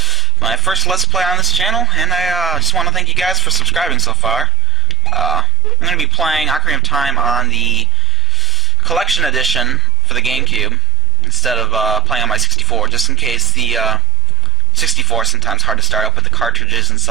my first Let's Play on this channel, and I just want to thank you guys for subscribing so far. I'm going to be playing Ocarina of Time on the Collection Edition for the GameCube instead of playing on my 64, just in case the 64 is sometimes hard to start up with the cartridges and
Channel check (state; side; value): normal; both; correlation 0.74